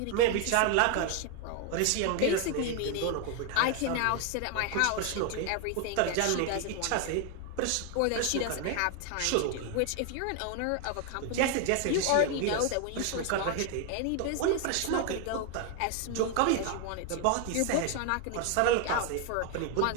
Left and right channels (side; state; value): both; different; correlation 0.01